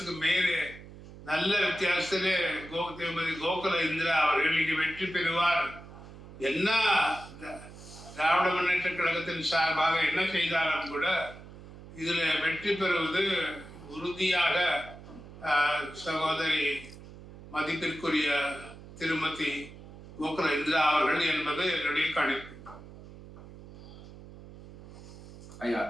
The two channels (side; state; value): right; noise; hum, 16 dB below the sound